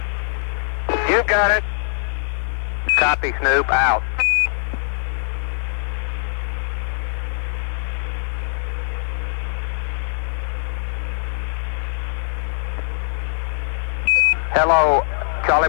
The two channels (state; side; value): silent; right; digital silence